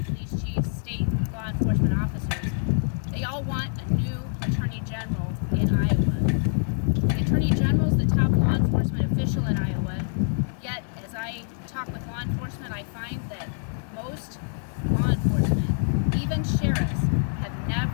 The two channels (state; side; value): silent; right; digital silence